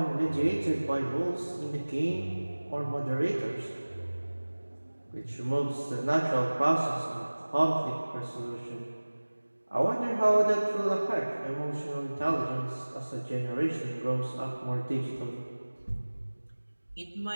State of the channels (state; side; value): inverted; both; correlation -1.00